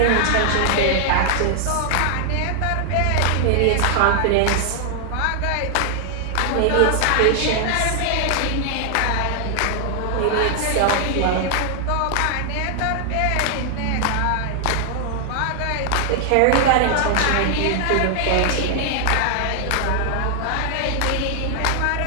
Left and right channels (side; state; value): both; different; correlation 0.00